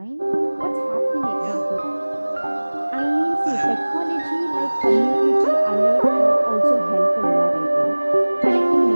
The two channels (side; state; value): both; inverted; correlation -1.00